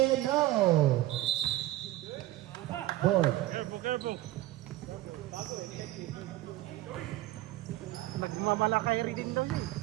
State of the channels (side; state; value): left; quieter; 16.4 dB